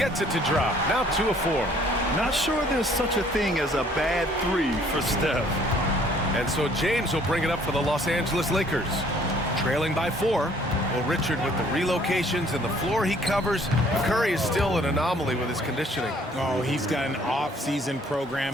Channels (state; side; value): normal; both; correlation 0.59